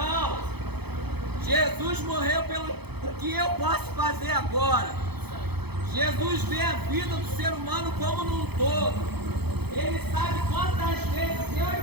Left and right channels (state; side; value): late; left; 0.98 ms